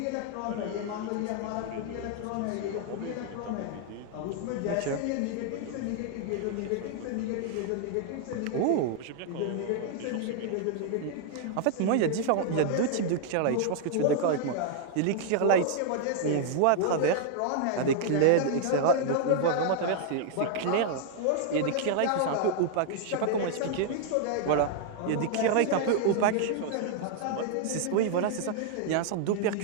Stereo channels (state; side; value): different; both; correlation 0.00